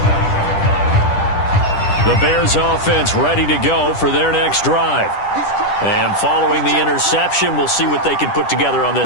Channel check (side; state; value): right; late; 10 ms